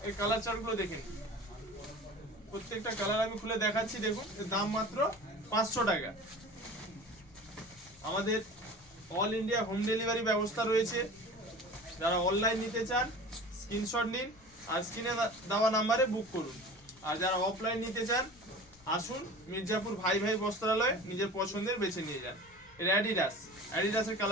এর কালার চার্টগুলো দেখেন, প্রত্যেকটা কালার আমি খুলে দেখাচ্ছি। দেখুন, এর দাম মাত্র 500 টাকা। আমাদের অল ইন্ডিয়া হোম ডেলিভারি ব্যবস্থা রয়েছে। যারা অনলাইন নিতে চান স্ক্রিনশট নিন আর স্ক্রিনে দেওয়া নাম্বারে বুক করুন। আর যারা অফলাইন নিতে চান আসুন মির্জাপুর ভাই ভাই বস্ত্রালয়ে, নিজের পছন্দের বেছে নিয়ে যান। এর অ্যাডিডাসের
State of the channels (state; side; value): normal; both; correlation 0.38